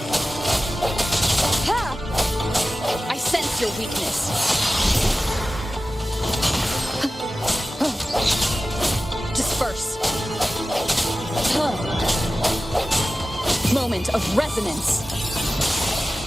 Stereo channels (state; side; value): normal; both; correlation 0.95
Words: I sense your weakness. Disperse. Moment of resonance.